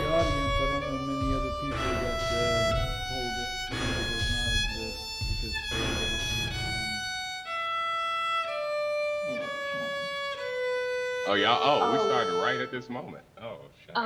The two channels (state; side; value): identical; both; correlation 1.00